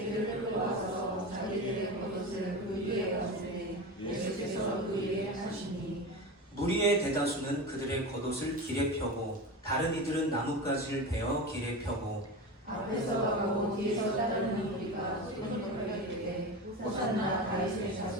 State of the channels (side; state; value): both; normal; correlation 0.25